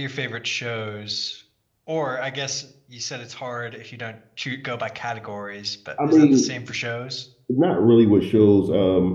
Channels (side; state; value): both; identical; correlation 1.00